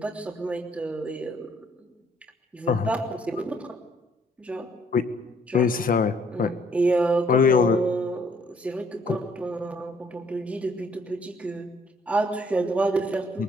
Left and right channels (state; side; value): normal; both; correlation 0.64